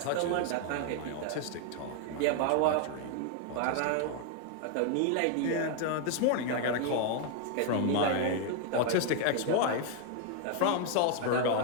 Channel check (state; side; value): different; both; correlation 0.00